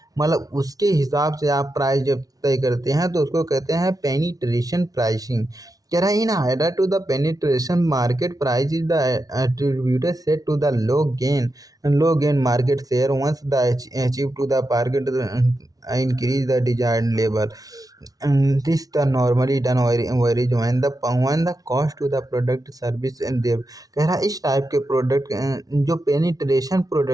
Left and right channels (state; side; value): late; left; 0.18 ms